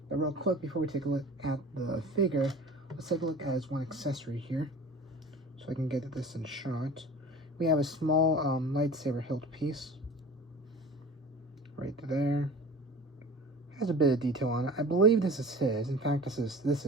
But real quick, before we take a look at the figure, let's take a look at his one accessory here, so I can get this in shot. We have a small lightsaber hilt piece right there. It has a bit of detail on it. I believe this is his. In fact, this is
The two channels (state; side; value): normal; both; correlation 0.39